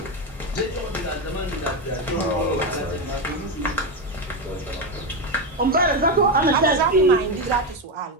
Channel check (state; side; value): normal; both; correlation 0.11